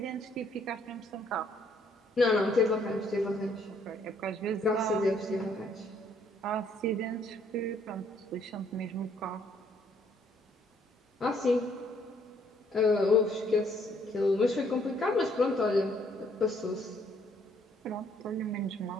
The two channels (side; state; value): both; normal; correlation 0.66